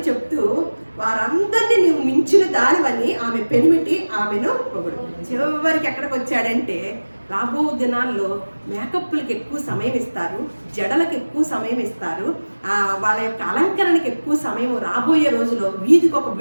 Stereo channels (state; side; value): inverted; both; correlation -1.00